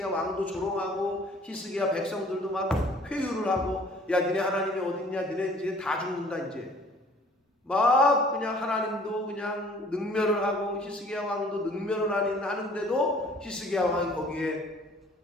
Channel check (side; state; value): both; normal; correlation 0.54